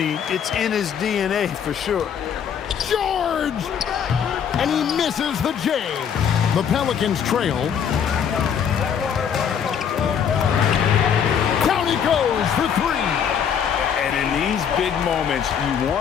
It's in his DNA for sure. George! And he misses the J. The Pelicans trail. Down he goes for 3. And in these big moments, you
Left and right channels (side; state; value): right; quieter; 7.9 dB